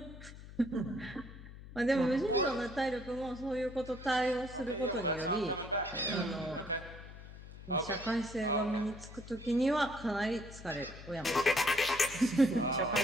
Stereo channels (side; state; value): left; noise; hum, 15 dB below the sound